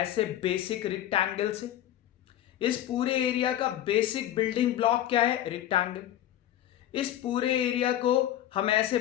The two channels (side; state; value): right; quieter; 12.4 dB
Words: बेसिक रेक्टेंगल से। इस पूरे एरिया का बेसिक बिल्डिंग ब्लॉक क्या है, रेक्टेंगल। इस पूरे एरिया को हम ऐसे